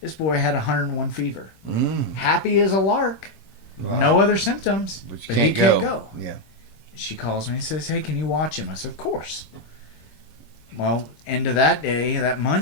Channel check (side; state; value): right; late; 26 ms